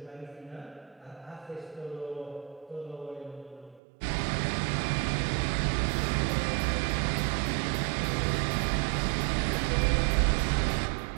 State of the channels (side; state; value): left; drops out; at 3.8 s